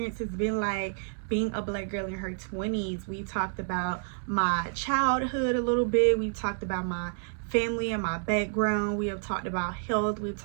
has been like being a black girl in her 20s. We talked about my childhood a little bit. We talked about my family and my background. We have talked about health. We've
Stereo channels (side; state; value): left; silent; 58 dB below the other